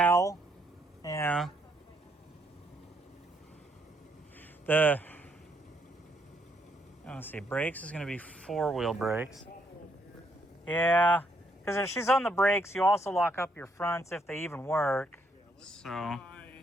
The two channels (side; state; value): both; normal; correlation 0.73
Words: Yeah. Let's see. Brakes is going to be 4-wheel brakes. Yeah. Because if she's on the brakes, you also lock up your fronts if they even work. So.